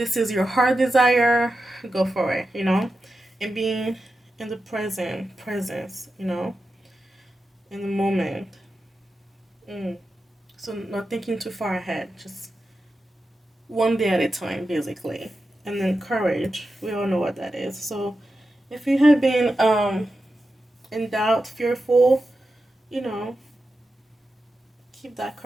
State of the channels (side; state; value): both; normal; correlation 0.90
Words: is your heart desire, go for it, and being in the presence, in the moment. So not thinking too far ahead, just one day at a time, basically. And then courage, we all know what that is. So if you have been in doubt, fearful, you know, keep that